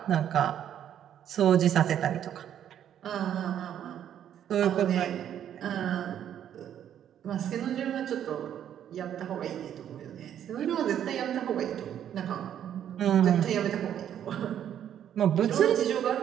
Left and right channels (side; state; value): left; quieter; 10.0 dB